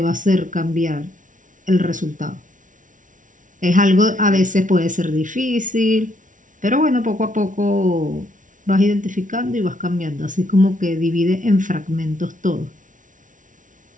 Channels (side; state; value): left; late; 0.37 ms